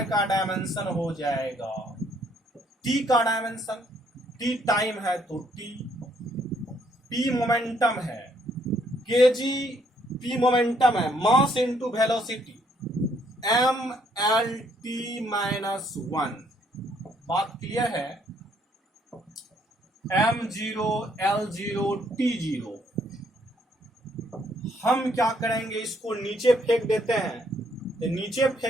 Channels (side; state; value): both; normal; correlation 0.68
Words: का डायमेंशन हो जाएगा टी का डायमेंशन, टी टाइम है तो टी, पी मोमेंटम है, केजी पी मोमेंटम है, mass into velocity M L T minus 1। बात क्लियर है। m0 l0 t0। हम क्या करेंगे, इसको नीचे फेंक देते हैं। तो नीचे